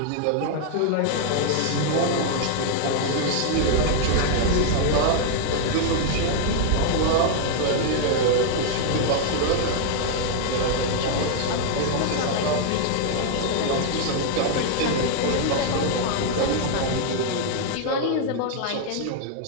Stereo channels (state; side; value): different; both; correlation 0.00